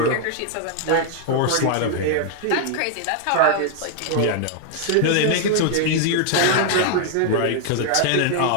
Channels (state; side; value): different; both; correlation 0.00